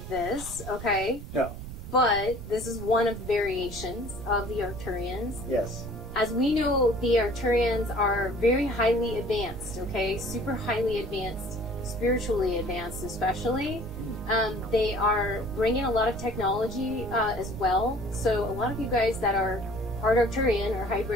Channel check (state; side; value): noise; right; rumble, 10 dB below the sound